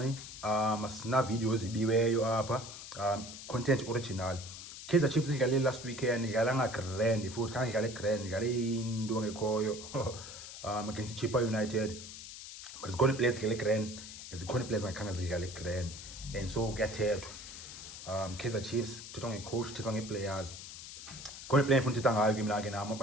asina videos ibiweyo apha. Content original. Kaizer Chiefs idlale last weekend, idlala nga grand futhi khange idlale grand, idlale into ngekhoyo against Chippa United. But it's going to play the grand, it's going to play the grand, and so kuyathethwa. Kaizer Chiefs thethwa ngecoach, thethwa ngeplayers. Going to play futhi thethwa ngayo kimi la ke nama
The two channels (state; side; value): noise; left; hiss, 12 dB below the sound